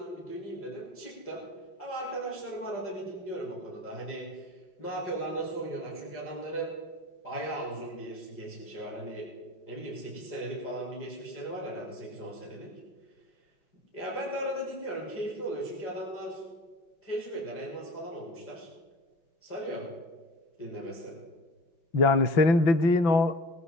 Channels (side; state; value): right; late; 5.9 ms